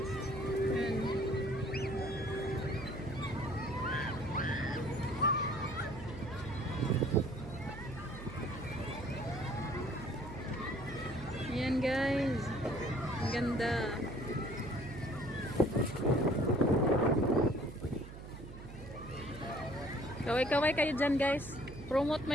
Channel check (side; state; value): right; noise; hum, 13 dB below the sound